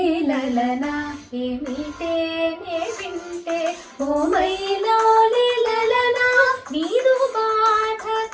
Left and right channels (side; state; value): both; identical; correlation 1.00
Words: లలనా ఏమిటే నే వింటే ఓ మైలౌలి లలనా నీదు బాధ